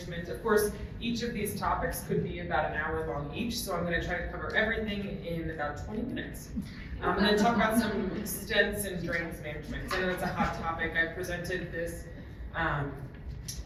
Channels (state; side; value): identical; both; correlation 1.00